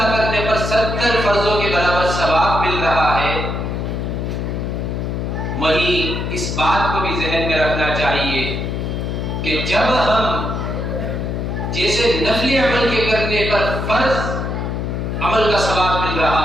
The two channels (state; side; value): noise; left; hum, 2 dB below the sound